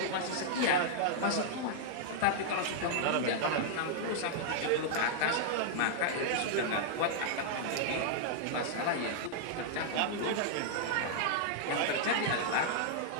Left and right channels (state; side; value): different; both; correlation -0.01